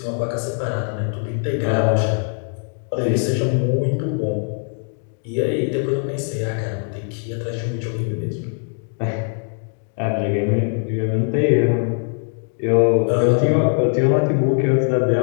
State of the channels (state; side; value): silent; right; 55 dB below the other